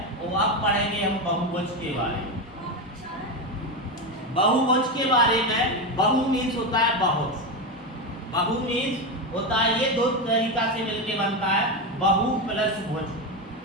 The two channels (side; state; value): both; normal; correlation 0.14